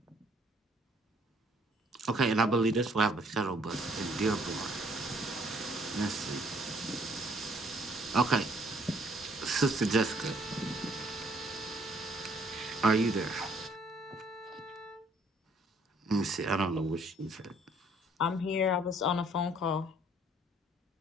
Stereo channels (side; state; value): both; normal; correlation 0.63